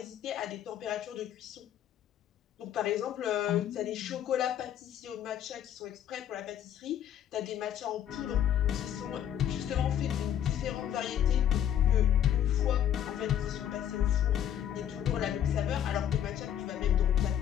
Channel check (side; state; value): right; quieter; 10.0 dB